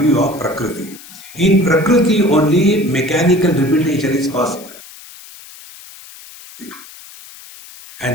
of Prakriti. In Prakriti only mechanical repetition is possible.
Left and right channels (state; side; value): noise; left; hiss, 19 dB below the sound